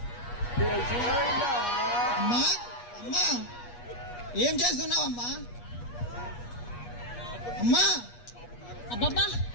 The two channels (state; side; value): late; right; 8.3 ms